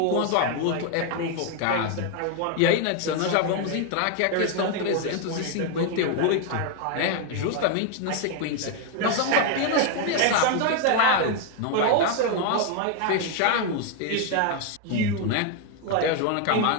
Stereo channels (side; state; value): both; different; correlation 0.01